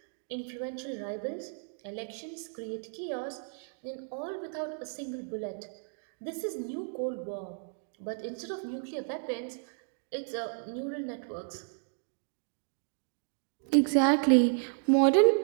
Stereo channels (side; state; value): left; silent; digital silence